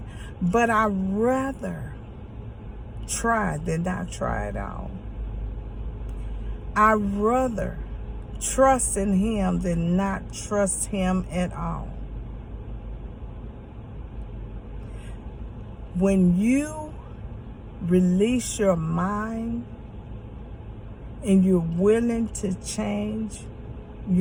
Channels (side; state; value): both; identical; correlation 1.00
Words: But I'd rather try than not try at all. I'd rather trust in Him than not trust Him at all. When you release your mind and you're willing to change